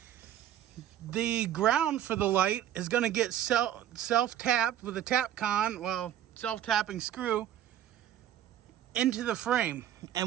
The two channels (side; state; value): left; quieter; 11.4 dB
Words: The ground for the light is going to get self-tapped with a Tapcon, well, self-tapping screw, into the frame.